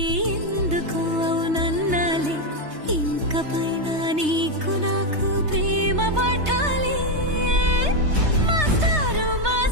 ఎందుకు అవునన్నాలే ఇంక పైన నీకు నాకు ప్రేమ పాఠాలే మాస్టారు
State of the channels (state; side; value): late; left; 3.2 ms